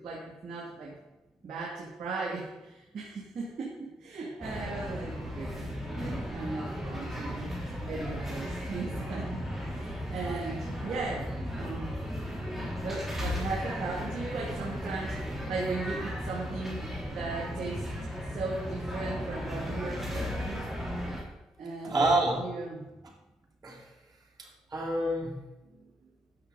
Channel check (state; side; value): normal; both; correlation 0.77